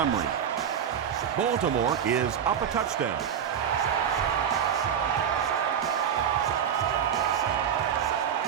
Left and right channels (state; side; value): quieter; left; 8.4 dB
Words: Baltimore is up a touchdown.